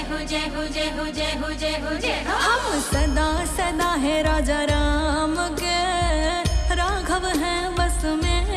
हो जय हो जय हो जय हो जय हो जय हो। हम सदा सदा है राजा राम के, राघव है बस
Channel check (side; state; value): both; identical; correlation 1.00